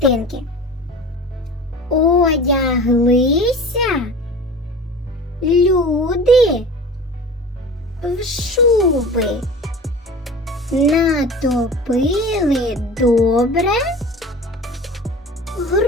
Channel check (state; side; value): normal; both; correlation 0.37